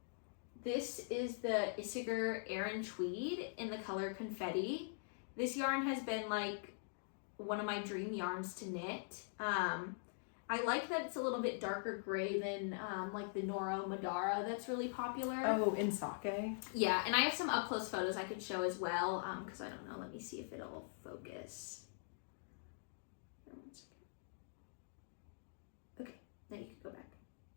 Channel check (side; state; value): right; silent; digital silence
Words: this is the Isiger Aran Tweed in the color Confetti. This yarn has been like one of my dream yarns to knit. I like that it's a little bit darker gray than like the Noro Madara that's really popular. Oh, in sake? Yeah, and I have some up close photos I could show as well, because I don't know. Let me see if it'll focus. Then you can go back.